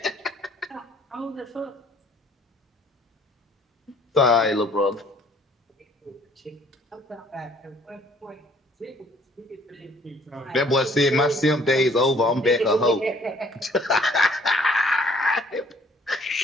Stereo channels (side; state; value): both; normal; correlation 0.59